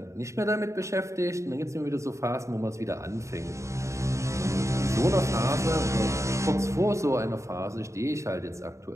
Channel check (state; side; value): late; left; 0.14 ms